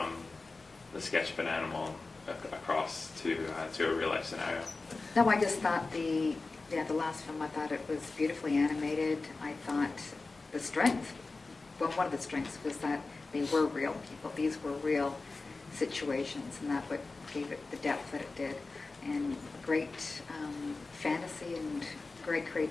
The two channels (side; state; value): right; quieter; 3.7 dB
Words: the sketch of an animal across to a real life scenario. No, I just thought the last film, I thought it was beautifully animated. I thought the strength, one of the strengths was that they were real people. These were real situations, and that what gave it the depth that it did. And great fantasy and great